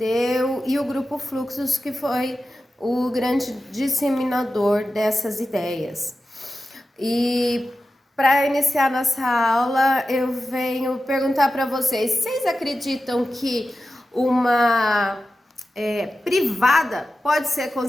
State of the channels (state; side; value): normal; both; correlation 0.93